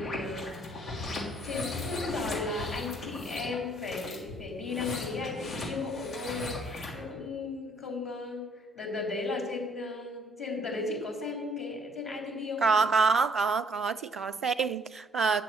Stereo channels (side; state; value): both; normal; correlation 0.62